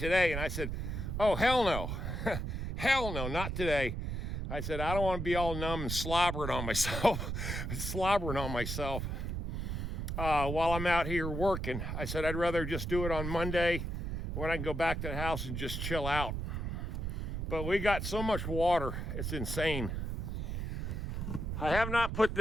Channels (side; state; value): right; noise; rumble, 3 dB below the sound